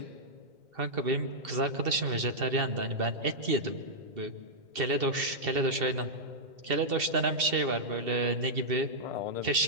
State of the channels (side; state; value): left; late; 2.7 ms